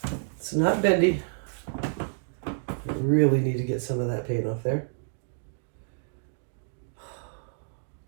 It's not bendy. I really need to get some of that paint off there.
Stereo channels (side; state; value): left; silent; digital silence